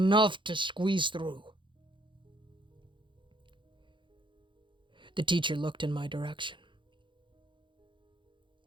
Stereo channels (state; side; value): late; left; 0.23 ms